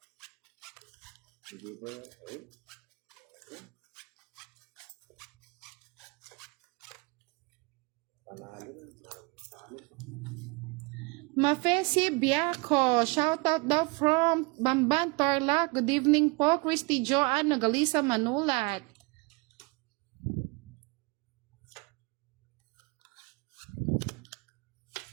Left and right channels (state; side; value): quieter; left; 27.7 dB